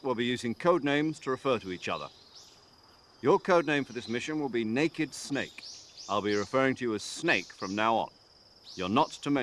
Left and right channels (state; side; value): identical; both; correlation 1.00